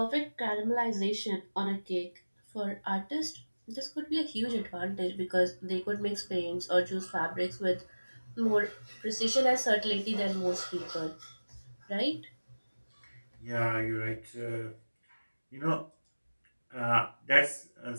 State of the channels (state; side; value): inverted; both; correlation -1.00